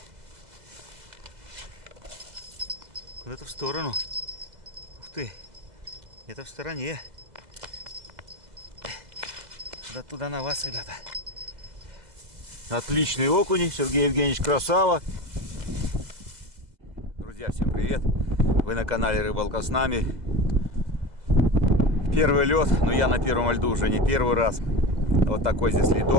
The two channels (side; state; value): left; late; 2.0 ms